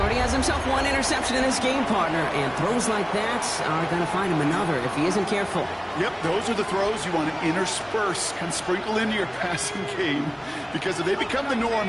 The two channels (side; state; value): both; identical; correlation 1.00